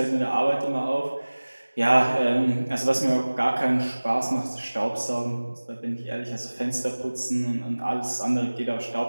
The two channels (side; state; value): both; inverted; correlation -1.00